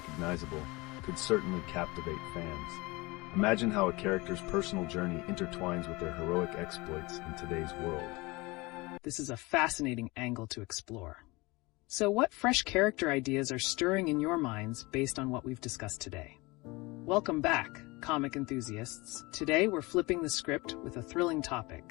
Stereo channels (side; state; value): right; quieter; 23.8 dB